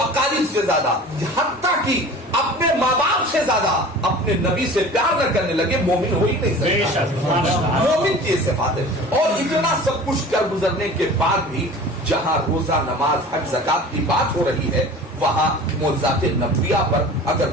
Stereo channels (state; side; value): normal; both; correlation 0.41